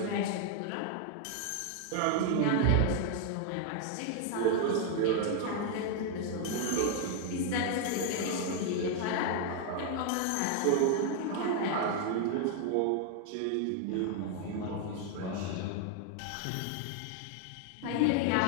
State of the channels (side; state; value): both; different; correlation 0.00